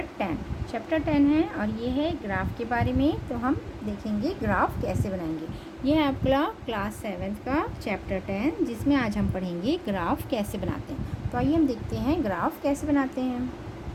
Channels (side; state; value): both; identical; correlation 1.00